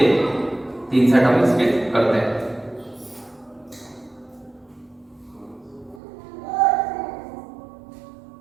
3 सेट हम इसके करते हैं।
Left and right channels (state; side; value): drops out; left; at 6.0 s